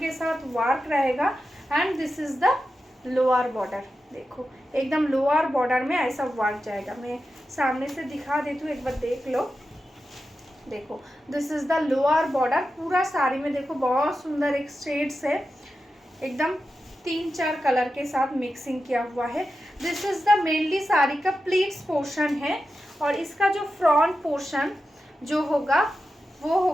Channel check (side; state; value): both; normal; correlation 0.91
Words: साथ वर्क रहेगा। And this is the lower border. देखो एकदम लोअर बॉर्डर में ऐसा वर्क जाएगा। मैं सामने से दिखा देती हूँ, एक बार देख लो। देखो this is the lower border, पूरा साड़ी में देखो बहुत सुंदर एक शेड्स है, एकदम 3-4 कलर के साथ मिक्सिंग किया हुआ है। This is the mainly sari का प्लीट्स पोर्शन है और इसका जो फ्रंट पोर्शन जो होगा वो